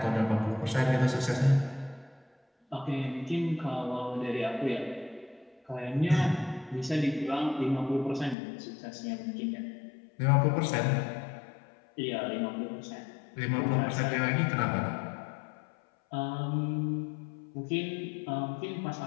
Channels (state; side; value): drops out; right; at 8.3 s